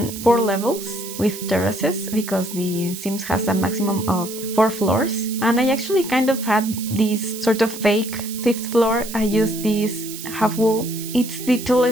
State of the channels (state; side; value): noise; right; hiss, 11 dB below the sound